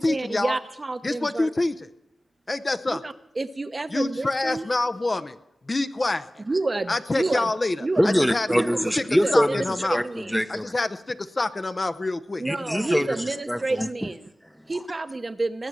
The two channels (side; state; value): both; normal; correlation 0.97